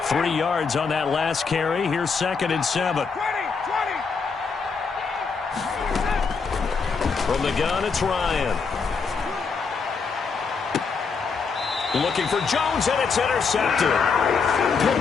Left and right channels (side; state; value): right; quieter; 5.2 dB